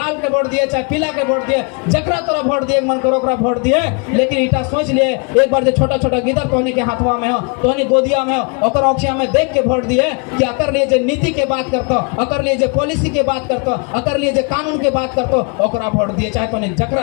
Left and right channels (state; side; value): quieter; right; 34.0 dB